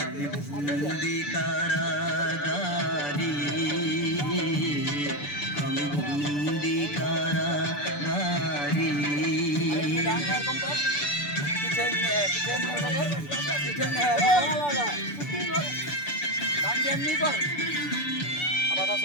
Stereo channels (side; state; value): right; late; 6.9 ms